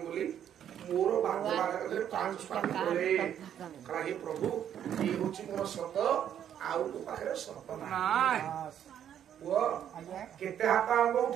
ବୋଲି ମୋର ଭାଗ୍ୟ ପାଞ୍ଚ ସ୍ୱାମୀ କଲେ କାରଣ ହେ ପ୍ରଭୁ ଇଏ ହଉଛି ମୋର ସତ ଆଉ ତୋ ପାଖରେ ସତ ନାହିଁ ପୁଅ କେତେ ହାତ ଆମ୍ବ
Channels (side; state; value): left; quieter; 9.8 dB